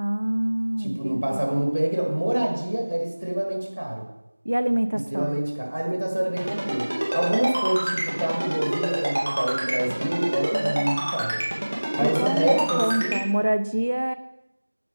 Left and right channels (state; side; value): inverted; both; correlation -1.00